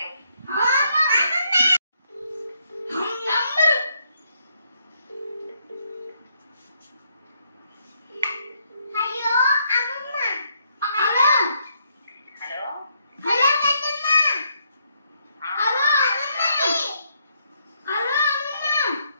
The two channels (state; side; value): inverted; both; correlation -0.74